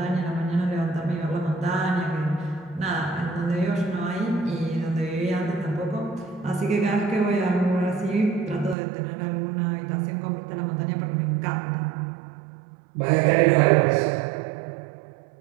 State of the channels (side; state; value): left; drops out; at 8.8 s